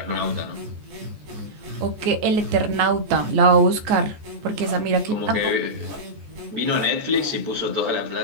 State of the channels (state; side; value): late; left; 14 ms